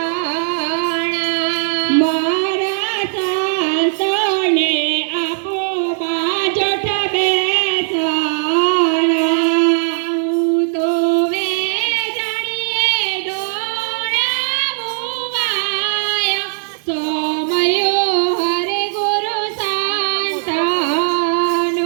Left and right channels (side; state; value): left; silent; digital silence